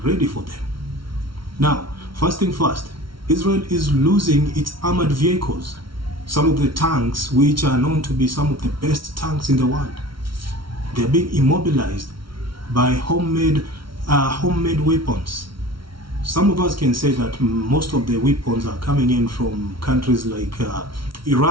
ready for them. Now, first thing first, Israel is losing its armored vehicles. Some of the tanks, which are known to be some of the best tanks in the world, they're being immobilized by homemade weapons. Some of us can say that most of the weapons are coming in from countries like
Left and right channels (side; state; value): left; late; 0.74 ms